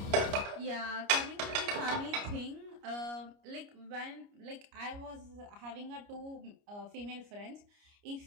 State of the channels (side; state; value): left; late; 29 ms